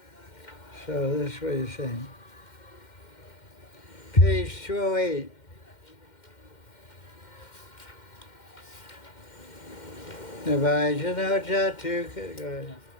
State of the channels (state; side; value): late; right; 2.1 ms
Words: So this is what he's saying. Page 208. Navajano Jatu. Go ahead.